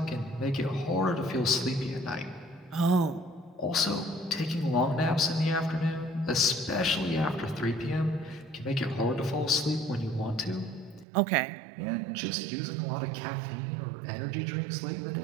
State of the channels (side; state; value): left; drops out; at 11.1 s